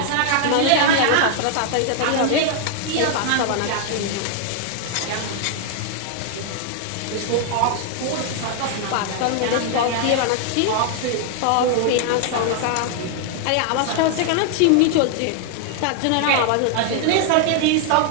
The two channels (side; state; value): both; different; correlation 0.00